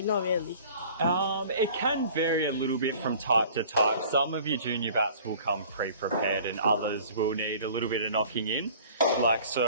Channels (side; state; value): both; inverted; correlation -0.48